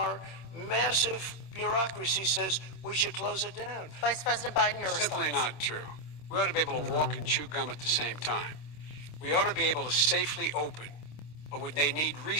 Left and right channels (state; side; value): late; right; 26 ms